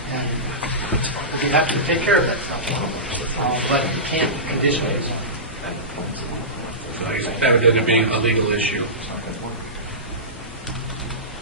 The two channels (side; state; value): both; normal; correlation -0.20